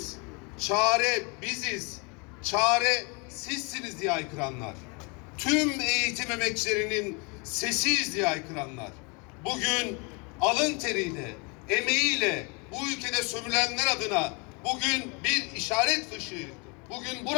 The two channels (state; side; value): quieter; right; 31.4 dB